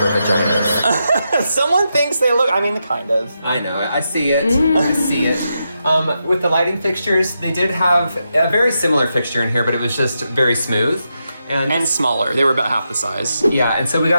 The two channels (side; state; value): both; inverted; correlation -0.85